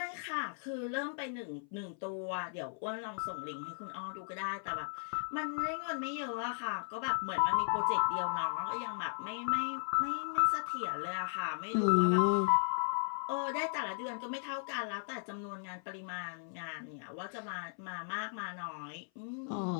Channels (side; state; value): right; silent; 53 dB below the other